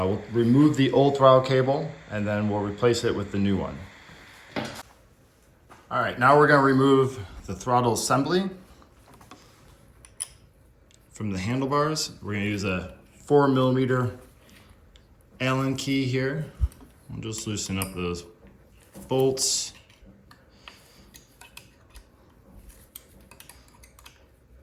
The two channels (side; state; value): both; identical; correlation 1.00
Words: remove the old throttle cable and then we'll replace it with the new one. All right, now we're going to remove the throttle assembly from the handlebars. We're going to use a 4mm Allen key here. We'll just loosen up those bolts.